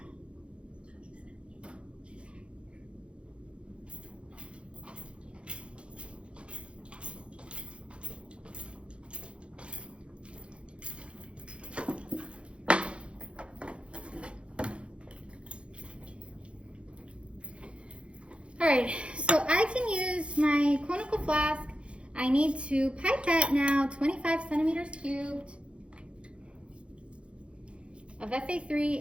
All right, so I can use my conical flask. I need to pipette now 25 centimeters cubed of Fa3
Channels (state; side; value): late; left; 0.059 ms